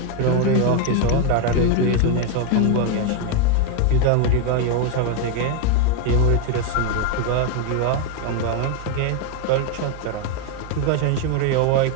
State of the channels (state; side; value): different; both; correlation 0.01